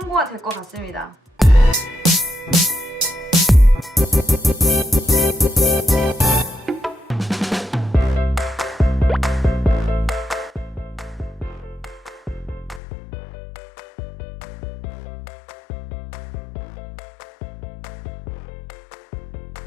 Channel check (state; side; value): drops out; right; at 12.8 s